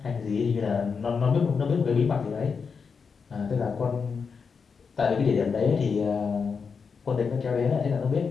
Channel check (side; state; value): right; quieter; 5.6 dB